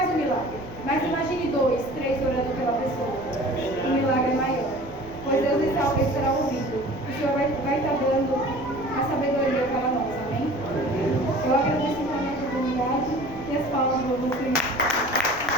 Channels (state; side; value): noise; left; rumble, 17 dB below the sound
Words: um milagre. Mas imagine 2, 3.